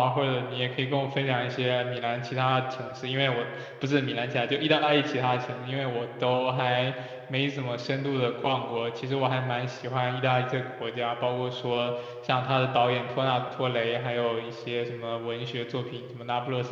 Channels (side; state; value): both; identical; correlation 1.00